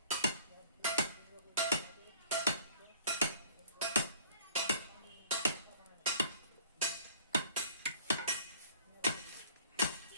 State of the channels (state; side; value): inverted; both; correlation -0.53